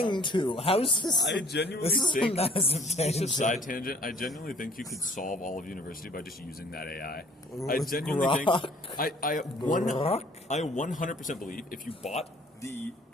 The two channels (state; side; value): normal; both; correlation 0.56